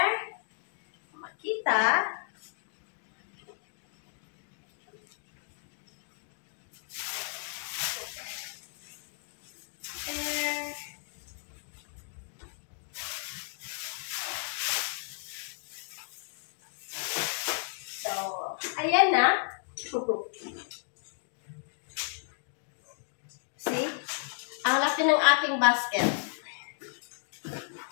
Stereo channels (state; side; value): silent; right; digital silence